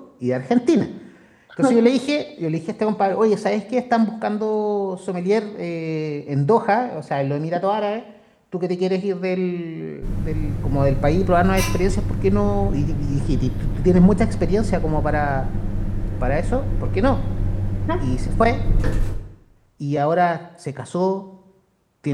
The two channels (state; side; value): identical; both; correlation 1.00